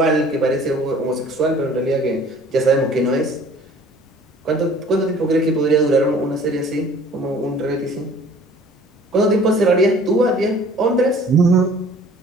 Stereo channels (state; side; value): normal; both; correlation 0.51